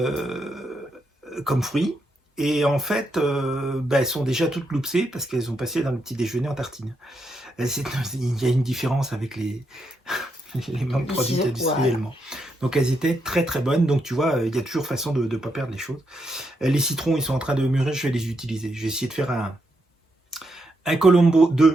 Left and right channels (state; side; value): normal; both; correlation 0.81